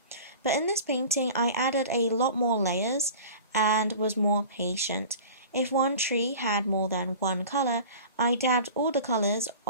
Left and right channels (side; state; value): both; inverted; correlation -0.39